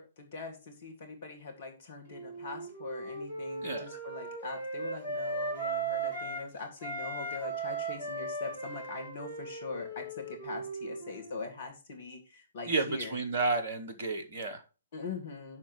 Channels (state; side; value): inverted; both; correlation -0.44